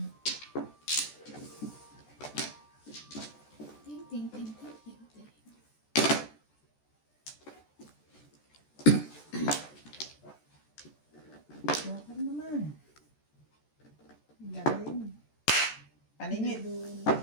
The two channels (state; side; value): late; right; 14 ms